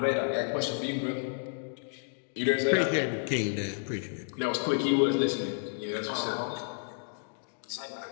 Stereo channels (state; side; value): silent; right; digital silence